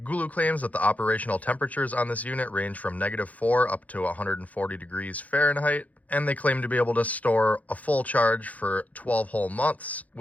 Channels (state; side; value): late; right; 0.073 ms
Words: GOOLOO claims that the operational temperatures on this unit range from -4 up to 140 degrees Fahrenheit, and they claim to be able to store a full charge for 12 whole months